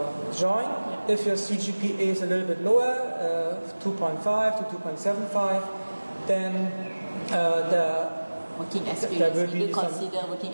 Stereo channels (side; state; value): both; inverted; correlation -1.00